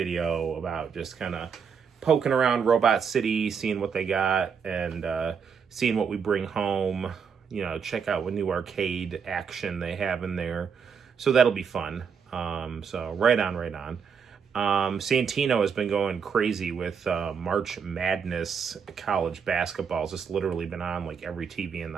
about just kind of poking around Robot City, seeing what they got, and seeing what we bring home. Check out what new arcade action they have in there. So that'll be fun. So right on. Santino has been going crazy with March Madness college basketball. It's just literally been on like every TV in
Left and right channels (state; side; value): quieter; left; 6.5 dB